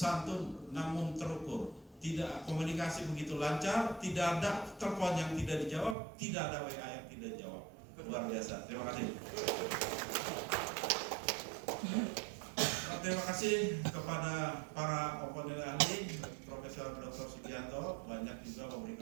namun terukur. Tidak komunikasi begitu lancar, tidak ada telepon yang tidak dijawab, tidak ada WA yang tidak dijawab. Luar biasa. Terima kasih. Terima kasih kepada para komponen ahli, Profesor Dr. Sugianto banyak juga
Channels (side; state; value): left; drops out; at 6.0 s